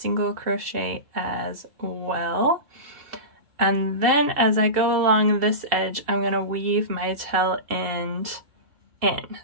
crochet as well. And then as I go along this edge, I'm going to weave my tail end in.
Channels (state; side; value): late; left; 2.7 ms